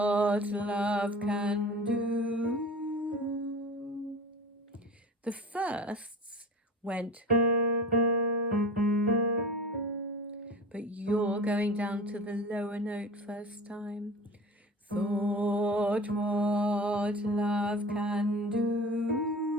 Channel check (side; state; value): both; normal; correlation 0.35